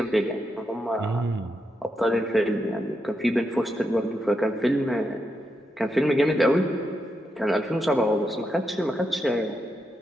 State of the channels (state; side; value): normal; both; correlation 0.84